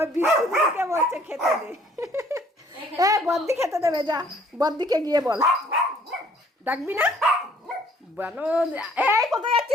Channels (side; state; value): both; normal; correlation 0.59